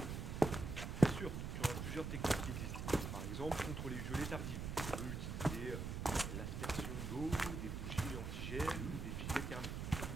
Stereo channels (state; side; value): noise; right; rumble, 4 dB below the sound